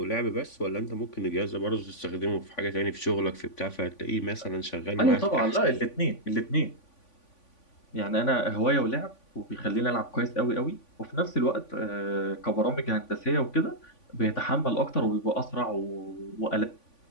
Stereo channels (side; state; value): right; late; 3.5 ms